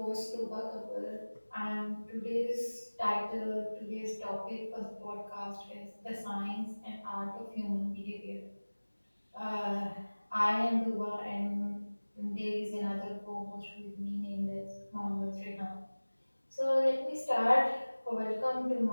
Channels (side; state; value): both; inverted; correlation -1.00